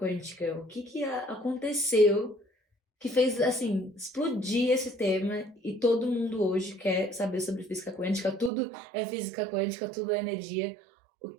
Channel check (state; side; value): drops out; left; at 8.5 s